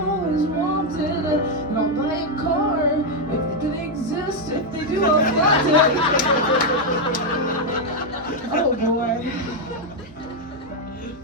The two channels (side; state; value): both; normal; correlation 0.02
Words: always wanted. And I'll buy a car if they exist. If they do, I'll flaunt it. Oh boy.